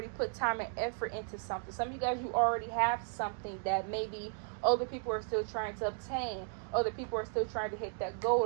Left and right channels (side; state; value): left; silent; 54 dB below the other